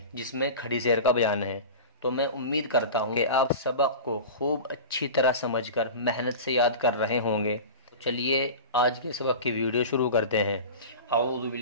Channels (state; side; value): inverted; both; correlation -0.32